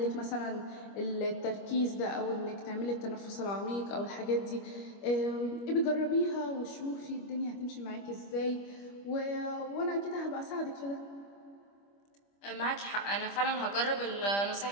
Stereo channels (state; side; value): late; right; 25 ms